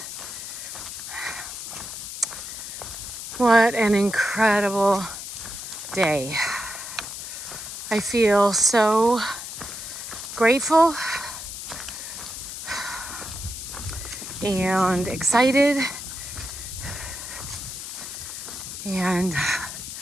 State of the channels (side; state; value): left; noise; hiss, 8 dB below the sound